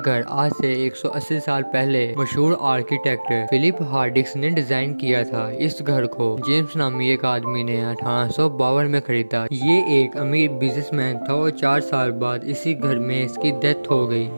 आज से 180 साल पहले मशहूर आर्किटेक्ट फिलिप हार्डिक्स ने डिजाइन किया था। इस घर को जेम्स नामी एक आदमी ने 1852 में खरीदा। ये एक अमीर बिजनेसमैन था और 4 साल बाद इसी घर में इसकी डेथ हो गई।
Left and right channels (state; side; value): inverted; both; correlation -1.00